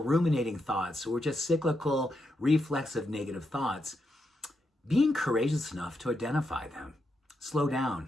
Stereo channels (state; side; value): normal; both; correlation 0.83